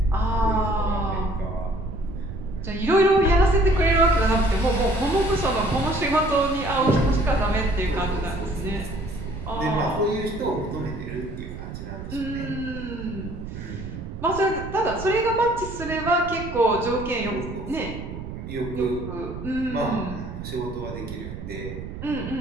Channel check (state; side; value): noise; right; rumble, 9 dB below the sound